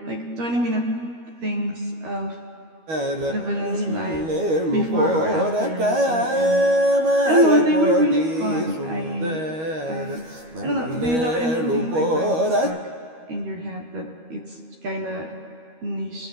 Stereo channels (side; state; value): left; late; 13 ms